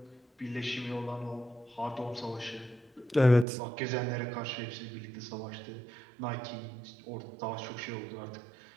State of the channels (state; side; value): drops out; left; at 3.5 s